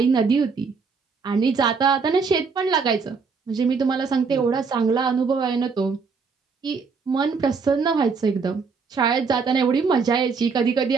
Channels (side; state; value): left; quieter; 5.1 dB